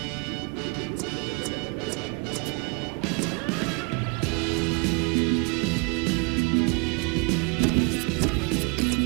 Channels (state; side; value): quieter; left; 31.6 dB